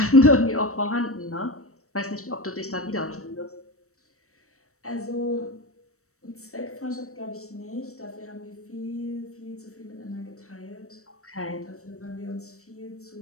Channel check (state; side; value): late; right; 0.64 ms